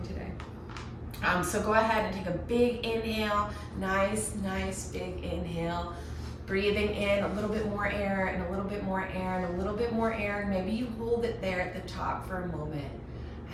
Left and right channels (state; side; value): identical; both; correlation 1.00